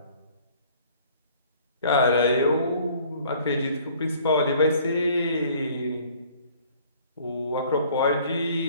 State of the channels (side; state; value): both; inverted; correlation -0.55